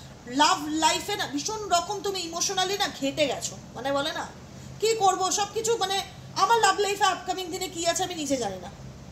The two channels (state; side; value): identical; both; correlation 1.00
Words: লাভ লাইফে না ভীষণ রকম তুমি ইমোশনালি না ঘেটে গেছো, মানে বলে না কি করব সব কিছু, মানে আমার লাভ লাইফে আপকামিং দিনে কি আছে আমি নিজে জানি না।